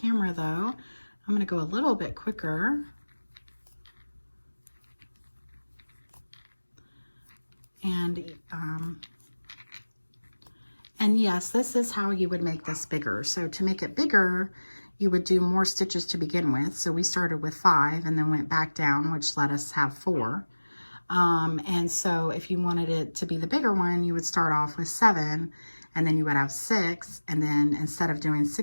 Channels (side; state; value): both; inverted; correlation -1.00